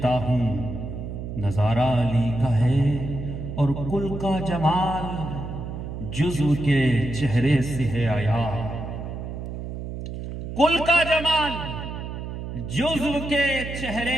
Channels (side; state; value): right; noise; hum, 7 dB below the sound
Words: ہوں نظارہ علی کا ہے، اور کل کا جمال جزو کے چہرے سے ہے آیا، کل کا جمال جزو کے